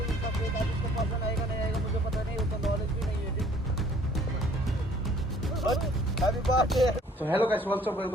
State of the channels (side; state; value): both; normal; correlation 0.57